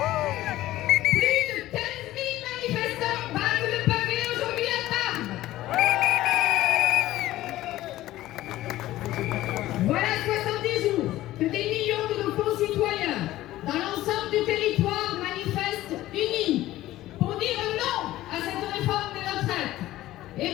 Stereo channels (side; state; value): right; quieter; 15.5 dB